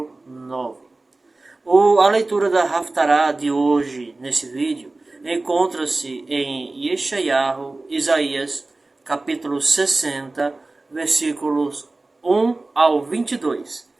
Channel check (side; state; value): left; quieter; 3.2 dB